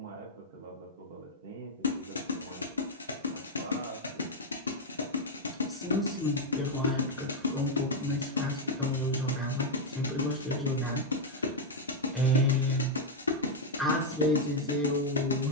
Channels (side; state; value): both; normal; correlation 0.00